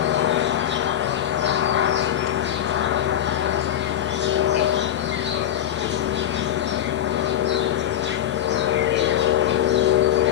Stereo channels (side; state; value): right; quieter; 10.9 dB